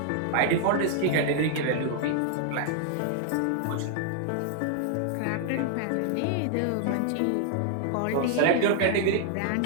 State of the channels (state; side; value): different; both; correlation 0.00